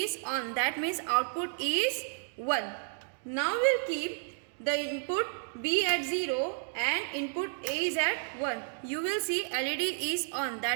on. That means output is 1. Now we will keep the input B at 0 and input A is at 1. You will see LED is on.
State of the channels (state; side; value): silent; left; digital silence